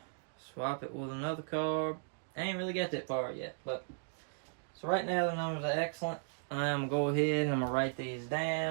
swap it with another carb. I ain't really got that far yet. But so right now the numbers are excellent. I'm going to go ahead and I'm going to write these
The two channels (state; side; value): silent; left; digital silence